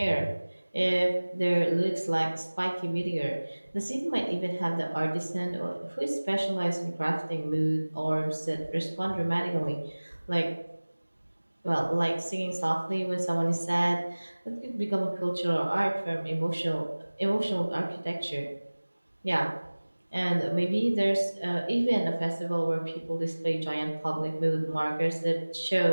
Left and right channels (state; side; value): inverted; both; correlation -1.00